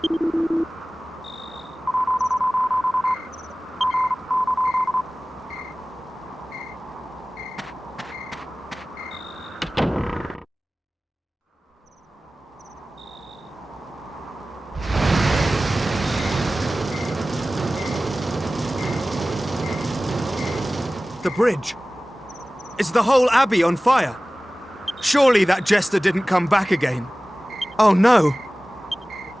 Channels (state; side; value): normal; both; correlation 0.97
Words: The bridge. Is the whole abbey on fire? Surely that jester didn't come back again. Oh no!